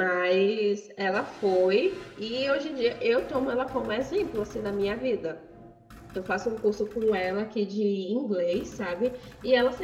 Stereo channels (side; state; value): both; identical; correlation 1.00